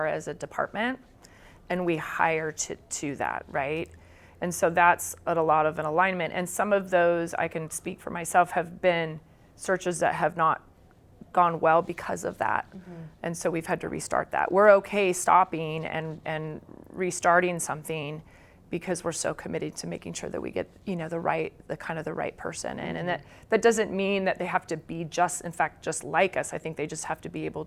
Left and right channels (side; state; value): both; identical; correlation 1.00